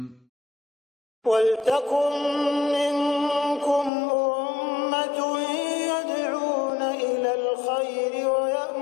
وَلْتَكُنْ مِنْكُمْ أُمَّةٌ يَدْعُونَ إِلَى الْخَيْرِ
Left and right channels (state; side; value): drops out; right; at 3.9 s